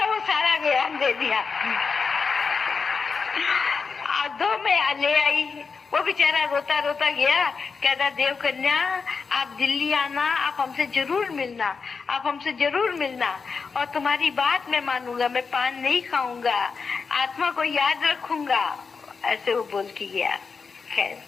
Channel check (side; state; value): right; quieter; 5.2 dB